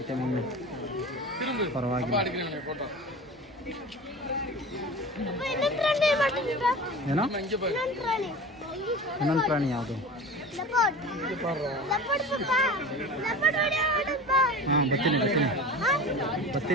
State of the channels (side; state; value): both; normal; correlation 0.34